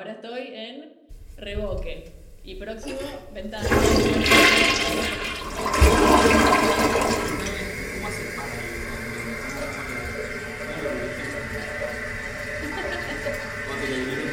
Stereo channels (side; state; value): both; identical; correlation 1.00